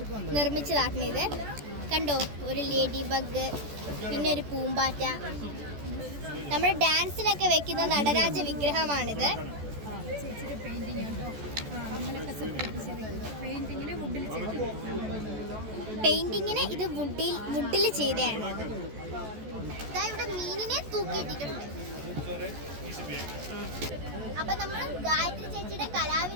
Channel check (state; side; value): late; left; 14 ms